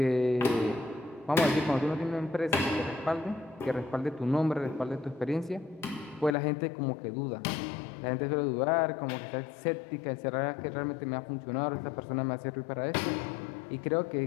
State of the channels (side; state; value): right; drops out; at 6.3 s